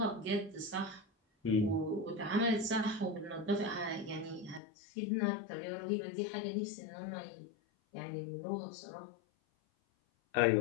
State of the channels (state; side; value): drops out; right; at 4.6 s